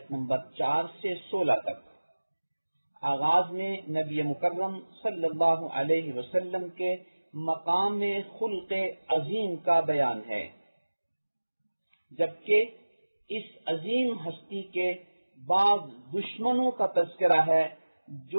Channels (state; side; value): inverted; both; correlation -1.00